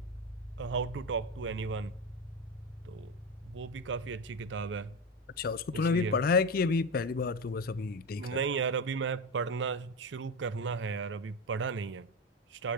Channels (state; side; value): normal; both; correlation 0.18